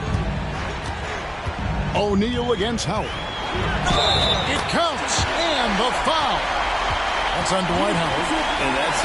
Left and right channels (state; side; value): identical; both; correlation 1.00